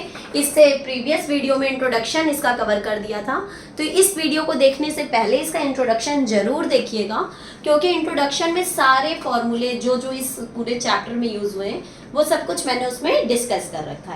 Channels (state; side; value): identical; both; correlation 1.00